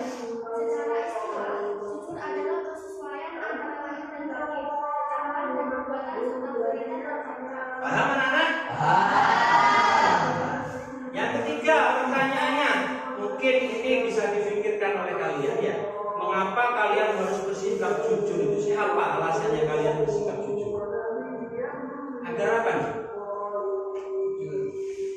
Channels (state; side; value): identical; both; correlation 1.00